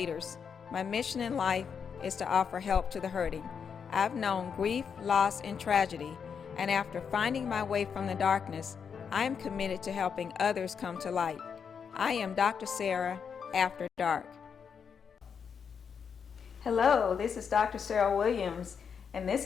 My mission in life is to offer help to the hurting. I've known grief, loss, and tragedy, and after finding my way from the darkness, I am committed to helping others come to light. I am Dr. Sarah After Dark. Hello, this is Dr. Sarah Williams, and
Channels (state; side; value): quieter; right; 6.7 dB